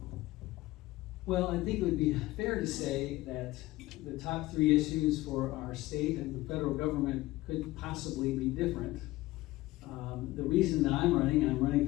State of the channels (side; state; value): right; quieter; 18.2 dB